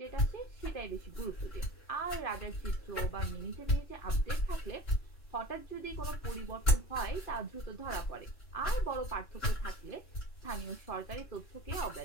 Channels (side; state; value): right; late; 2.9 ms